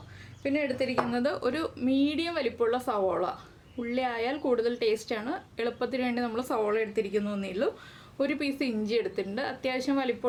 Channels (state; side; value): identical; both; correlation 1.00